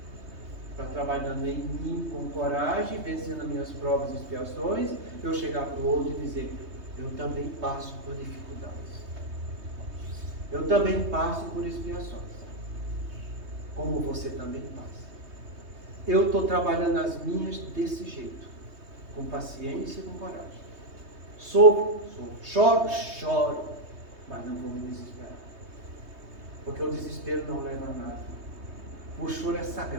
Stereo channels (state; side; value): late; left; 3.2 ms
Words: Para trabalhando em mim com coragem, vencendo as minhas provas e expiações, eu chegar para o outro e dizer, eu também passo por dificuldades. Eu também passo por expiações. Como você também passa. Eu estou trabalhando as minhas desse jeito. Com paciência e com coragem. Sofro, choro, mas não vou me desesperar. Porque o desespero não leva a nada. O choro é